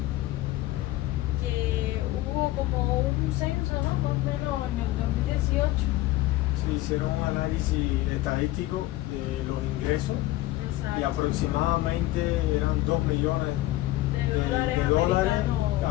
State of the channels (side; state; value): right; quieter; 16.7 dB